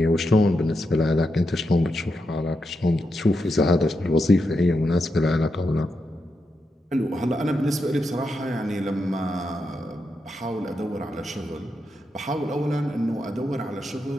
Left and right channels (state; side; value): normal; both; correlation 0.85